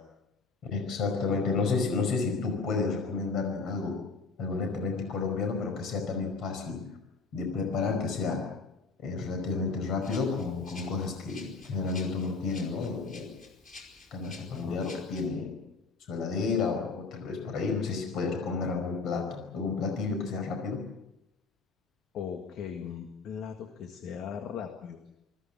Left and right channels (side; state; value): right; quieter; 4.1 dB